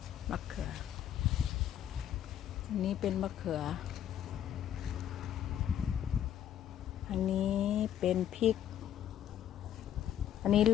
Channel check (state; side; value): quieter; right; 10.5 dB